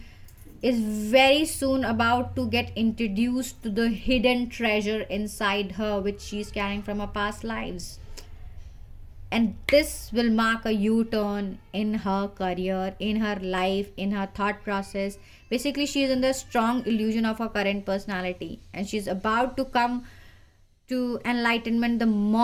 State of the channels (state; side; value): identical; both; correlation 1.00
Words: is very soon about to get introduced to the hidden treasure inside her, which she's carrying from her past lives. And this will mark a U-turn in her career, in her life, in her thought process. Basically, she is in the strong illusion of her current personality, and she's about to come to enlightenment the